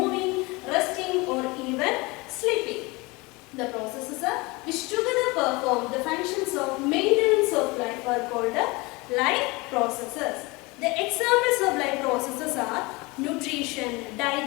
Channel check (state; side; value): quieter; right; 24.7 dB